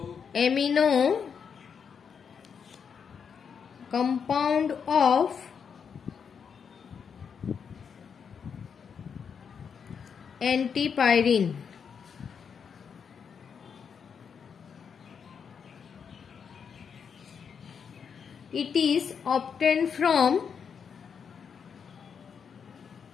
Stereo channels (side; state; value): right; quieter; 6.7 dB